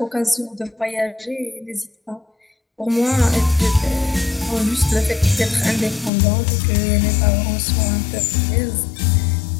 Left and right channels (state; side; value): drops out; right; at 6.1 s